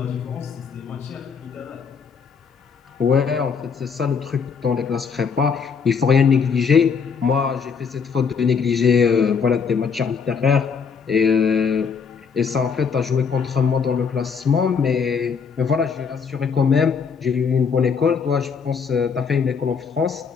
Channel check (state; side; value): quieter; right; 6.0 dB